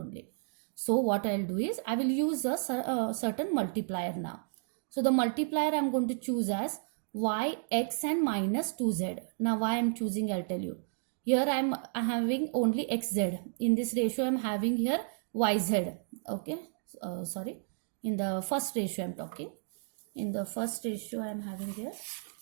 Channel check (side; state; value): left; silent; digital silence